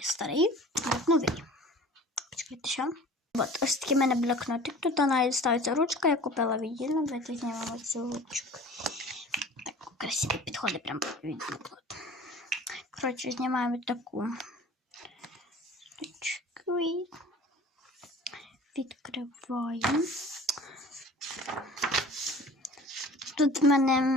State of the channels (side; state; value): both; normal; correlation 0.44